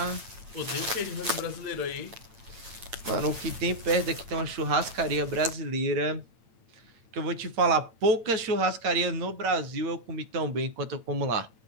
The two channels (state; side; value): late; left; 8.9 ms